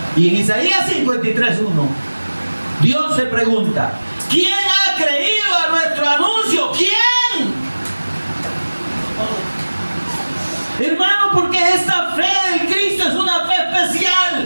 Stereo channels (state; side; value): inverted; both; correlation -1.00